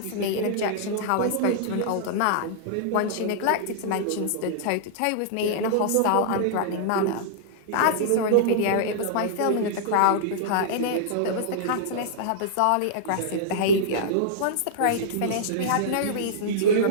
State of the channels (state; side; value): different; both; correlation -0.02